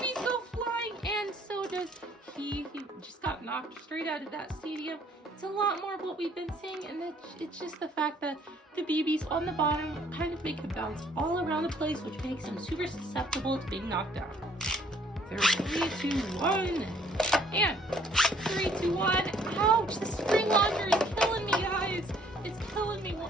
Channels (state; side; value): normal; both; correlation 0.61